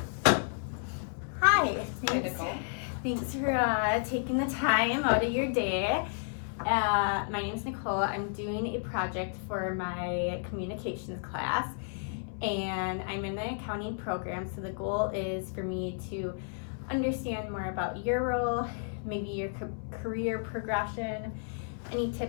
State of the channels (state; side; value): silent; right; 56 dB below the other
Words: Hi. Hi, Nicole. Thanks for taking the time out of your day. My name is Nicole. I'm doing a project for my communications class, and I'm in the accounting program. So the goal is for me to understand more about your role, maybe your career progression, any